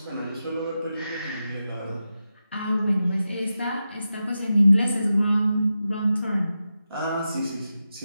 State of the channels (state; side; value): inverted; both; correlation -0.90